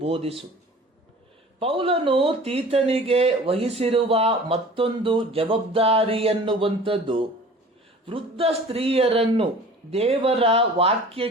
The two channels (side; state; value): both; normal; correlation 0.44